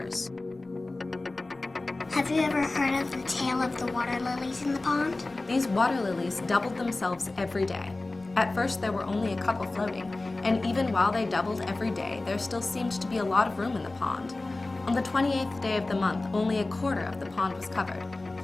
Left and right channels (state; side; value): quieter; right; 3.1 dB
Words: Have you ever heard of the tale of the water lilies in the pond? These water lilies doubled themselves every day. At first, there were only a couple floating, and even while they doubled every day, there still seemed to be a lot of room in the pond. On the 28th day of the month, only a quarter of the pond was covered,